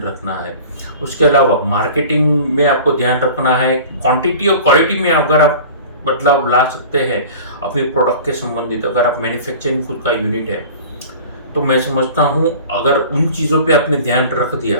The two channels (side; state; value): both; inverted; correlation -0.41